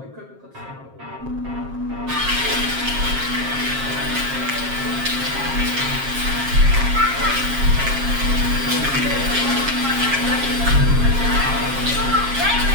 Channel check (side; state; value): left; late; 7.4 ms